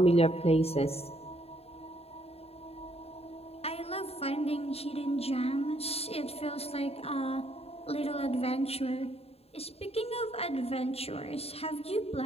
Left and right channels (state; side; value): late; right; 0.29 ms